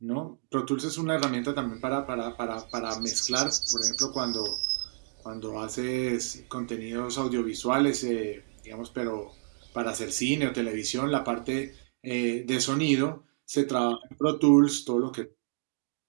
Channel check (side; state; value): left; silent; digital silence